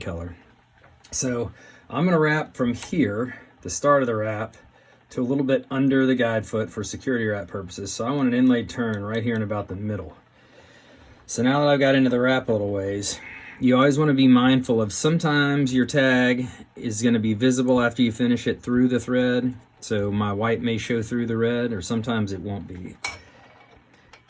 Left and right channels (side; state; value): both; identical; correlation 1.00